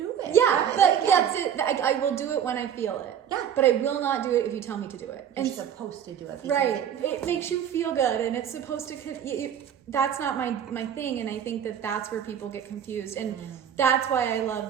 it. Yeah, but that's it. I will do it when I feel it. Yeah. But I will not do it if you tell me to do it. You're supposed to do it. Right. It makes you feel good, and it's supposed to... That's not my thing, and I think that's where people get confused. And that's why I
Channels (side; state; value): left; quieter; 8.9 dB